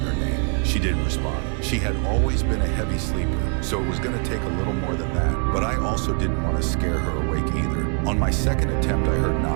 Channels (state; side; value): quieter; left; 36.4 dB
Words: her name. She didn't respond. She had always been a heavy sleeper, so it was going to take a little more than that. But I also didn't want to scare her awake either. On my second attempt, I heard